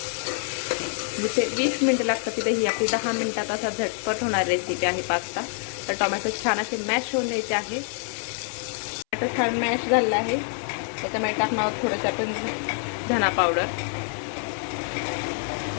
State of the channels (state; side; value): silent; right; 61 dB below the other